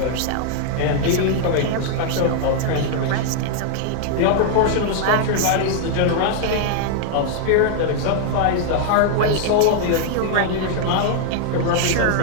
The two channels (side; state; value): both; different; correlation 0.00